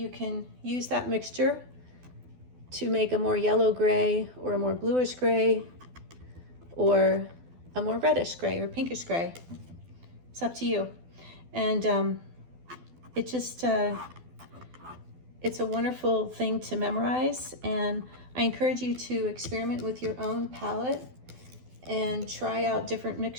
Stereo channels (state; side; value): late; left; 12 ms